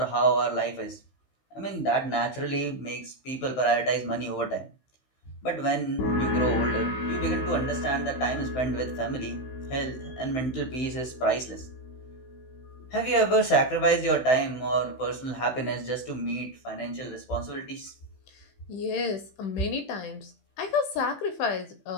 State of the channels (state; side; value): late; right; 15 ms